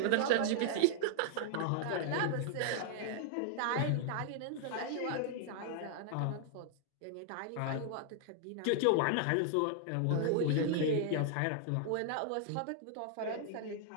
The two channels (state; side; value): different; both; correlation -0.01